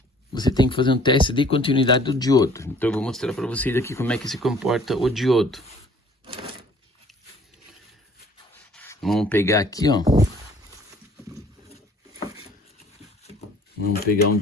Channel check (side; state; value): both; normal; correlation 0.54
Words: Você tem que fazer um teste de continuidade do diodo. Então eu vou mostrar para vocês aqui como é que se comporta o diodo. Vamos pegar aqui, ó. Vamos pegar um